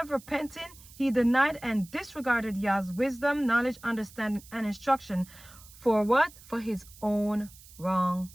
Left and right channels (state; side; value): noise; right; hiss, 21 dB below the sound